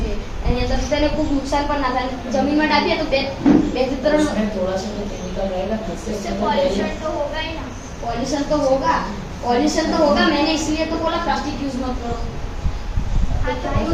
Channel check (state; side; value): identical; both; correlation 1.00